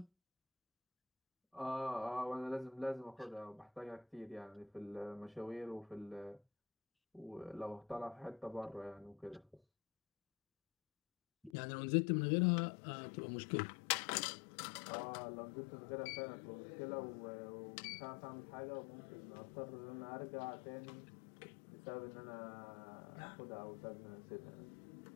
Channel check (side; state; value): right; drops out; at 11.5 s